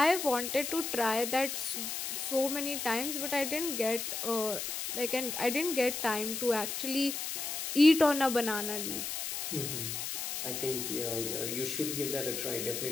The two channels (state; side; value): noise; left; hiss, 4 dB below the sound